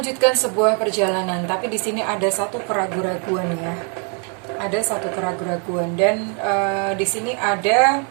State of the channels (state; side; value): quieter; left; 39.0 dB